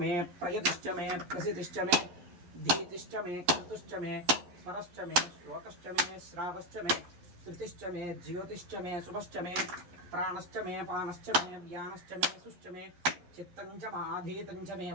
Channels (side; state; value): left; late; 11 ms